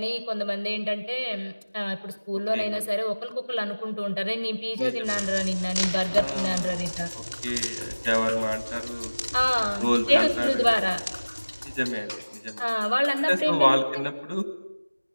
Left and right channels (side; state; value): both; inverted; correlation -1.00